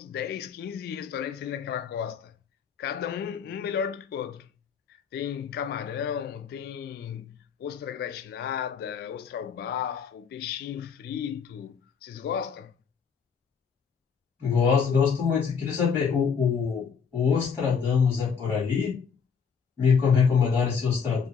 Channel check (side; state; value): right; quieter; 6.3 dB